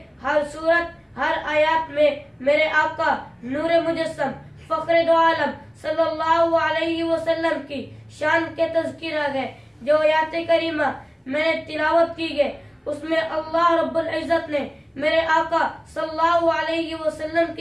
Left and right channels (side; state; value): both; identical; correlation 1.00